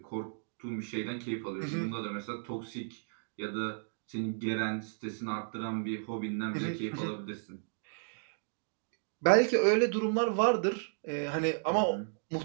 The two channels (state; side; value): silent; left; digital silence